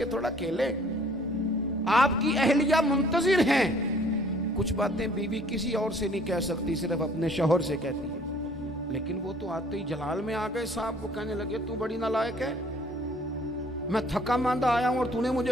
थोड़ा खेलें। आपकी अहलिया मुंतजिर हैं। कुछ बातें बीवी किसी और से नहीं कह सकती, सिर्फ अपने शौहर से कहती है। लेकिन वो तो आते ही जलाल में आ गए साहब, वो कहने लगे तू बड़ी नालायक है, मैं थका मांदा आया हूं और तूने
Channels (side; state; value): both; normal; correlation 0.57